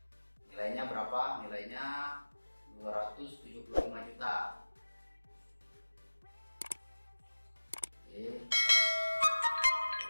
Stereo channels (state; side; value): inverted; both; correlation -1.00